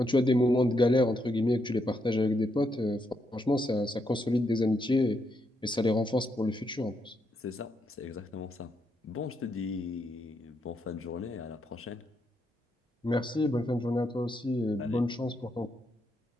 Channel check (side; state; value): both; normal; correlation 0.79